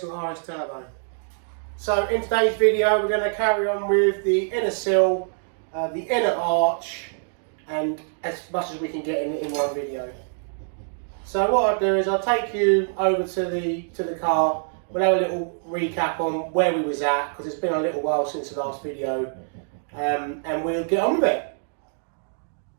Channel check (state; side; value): silent; left; digital silence